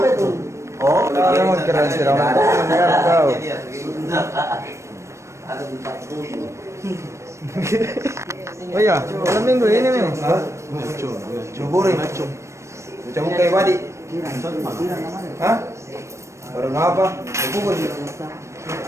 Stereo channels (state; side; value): late; left; 0.14 ms